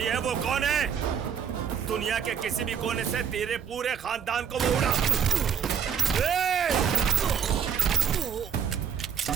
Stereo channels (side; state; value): left; quieter; 7.6 dB